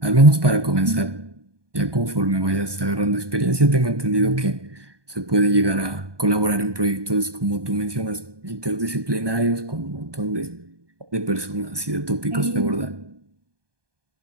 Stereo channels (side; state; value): left; late; 1.2 ms